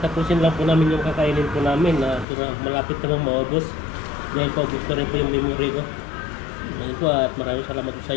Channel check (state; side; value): drops out; right; at 2.2 s